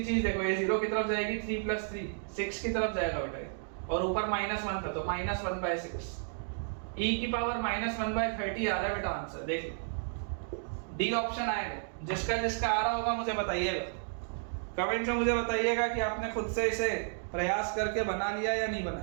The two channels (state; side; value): silent; left; digital silence